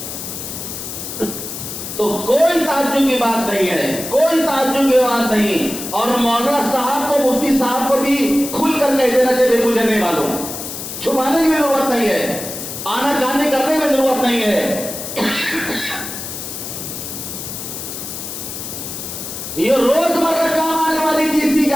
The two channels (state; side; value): noise; left; hiss, 8 dB below the sound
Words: تو کوئی تعجب کی بات نہیں ہے، کوئی تعجب کی بات نہیں۔ اور مولانا صاحب کو، مفتی صاحب کو بھی کھل کر کہہ دینا چاہیے مجھے نہیں معلوم، چھپانے کی ضرورت نہیں ہے، آنا جانے کرنے کی ضرورت نہیں ہے۔ یہ روزمرہ کام آنے والی چیز کی